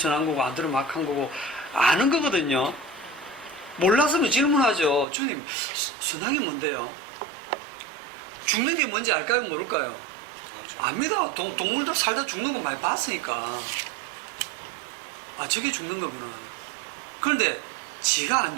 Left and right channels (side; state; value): left; drops out; at 5.1 s